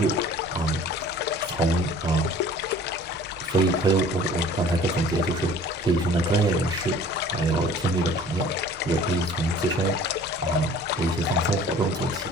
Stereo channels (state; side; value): normal; both; correlation 0.48